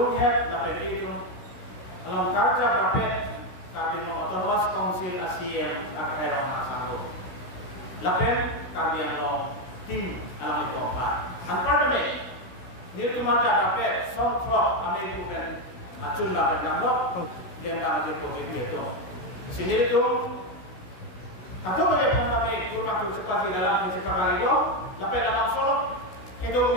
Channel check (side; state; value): right; late; 16 ms